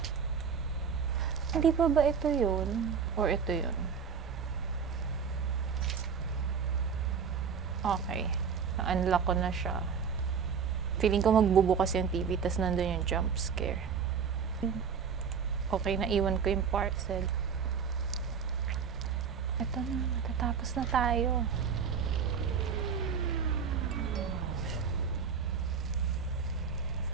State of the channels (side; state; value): left; quieter; 6.6 dB